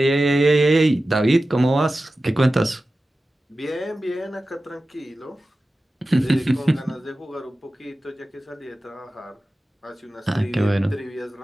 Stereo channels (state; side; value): normal; both; correlation 0.94